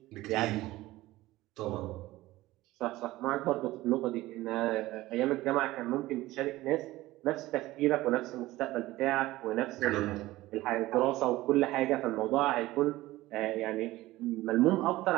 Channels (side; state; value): left; quieter; 17.6 dB